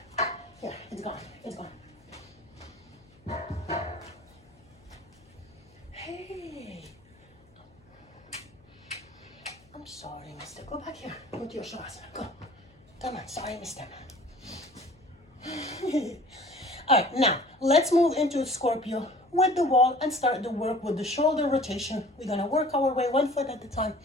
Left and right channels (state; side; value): noise; left; hum, 29 dB below the sound